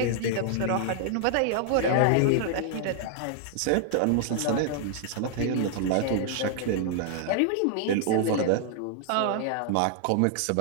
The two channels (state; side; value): different; both; correlation -0.01